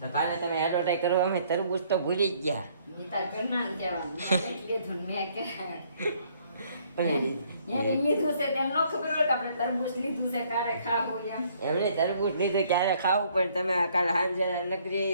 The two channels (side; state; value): both; inverted; correlation -0.64